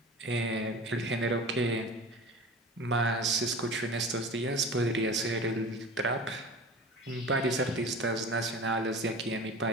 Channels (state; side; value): normal; both; correlation 0.36